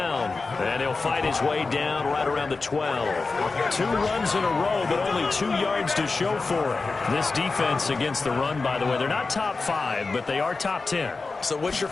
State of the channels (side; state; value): right; quieter; 4.0 dB